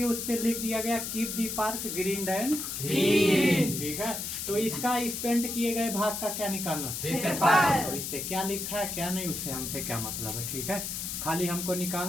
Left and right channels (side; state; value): left; noise; hiss, 4 dB below the sound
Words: उस पे लिख दिया गया keep the park green and clean. ठीक है। तो इसका इस पेंट किए गए भाग का क्या निकालना? क्षेत्रफल। तो इस पे क्या लिखा है क्या नहीं, उससे हमसे क्या मतलब है? ठीक है। खाली हमको